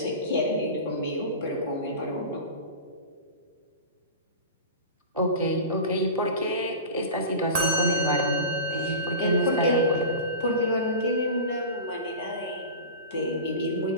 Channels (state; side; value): inverted; both; correlation -0.31